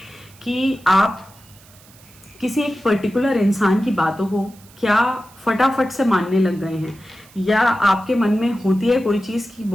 कि आप किसी एक पर्टिकुलर इंसान की बातों को क्या फटाफट से मानने लग गए हैं, या आपके मन में होती है कोई चीज़ कि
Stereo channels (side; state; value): right; noise; hiss, 25 dB below the sound